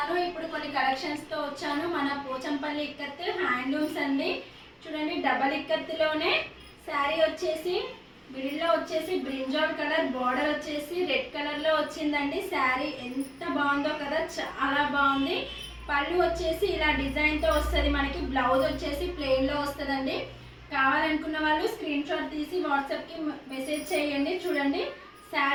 ఇప్పుడు కొన్ని కలెక్షన్స్తో వచ్చాను. మన పోచంపల్లి ఇక్కత్ హ్యాండ్లూమ్స్ అండి. చూడండి, డబల్ ఇక్కత్లోనే శారీ వచ్చేసి మిడిల్లో వచ్చేసి బ్రింజాల్ కలర్, బార్డర్ వచ్చేసి రెడ్ కలర్లో వచ్చిందండి. శారీ ఎంత బాగుందో కదా, చాలా బాగుంది. పళ్ళు వచ్చేసి ఇలా డిజైన్తో వస్తుంది మనకి. బ్లౌజ్ వచ్చేసి ప్లెయిన్లో వస్తుందండి. కావాలనుకున్న వాళ్ళు స్క్రీన్ షాట్ తీసి వాట్సాప్కి మెసేజ్ చేయండి. చూడండి,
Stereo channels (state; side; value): identical; both; correlation 1.00